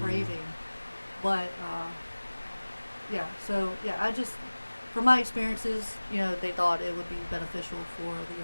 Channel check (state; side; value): inverted; both; correlation -1.00